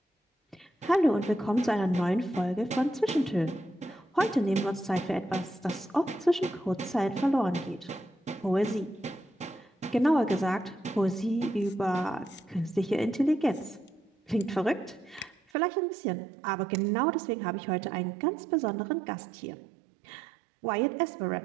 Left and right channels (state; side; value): drops out; left; at 15.4 s